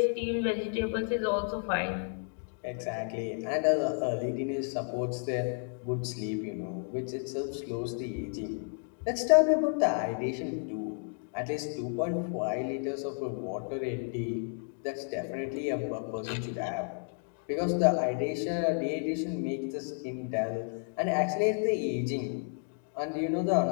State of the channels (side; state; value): right; silent; 57 dB below the other